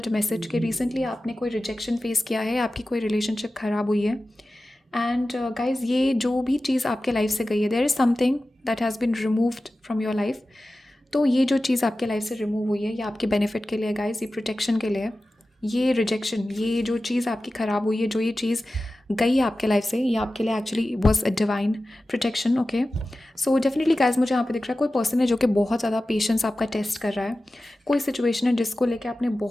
message कि रिसेंटली आपने कोई रिजेक्शन फेस किया है, आपकी कोई रिलेशनशिप ख़राब हुई है. एंड गाइज ये जो भी चीज़ आपके लाइफ से गई है, there is something that has been removed from your life. तो ये जो चीज़ आपके लाइफ से रिमूव हुई है ये आपके बेनिफिट के लिए गाइज, ये प्रोटेक्शन के लिए. ये रिजेक्शन, ये जो चीज़ आपकी ख़राब हुई है, जो ये चीज़ गई है आपके लाइफ से, ये आपके लिए actually was a divine protection. Okay, so definitely guys मुझे यहाँ पे दिख रहा है कोई पर्सन है जो कि बहुत ज़्यादा पेशेंस आपका टेस्ट कर रहा है. कोई सिचुएशन है जिसको लेके आपने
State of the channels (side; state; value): both; normal; correlation 0.95